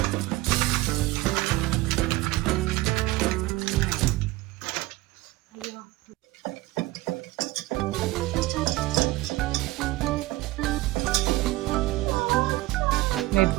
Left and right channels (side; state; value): left; quieter; 18.9 dB